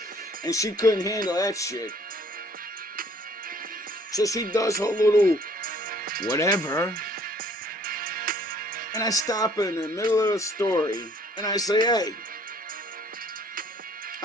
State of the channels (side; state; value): both; normal; correlation 0.58